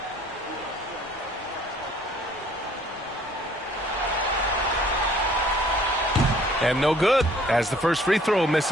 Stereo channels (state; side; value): normal; both; correlation 0.57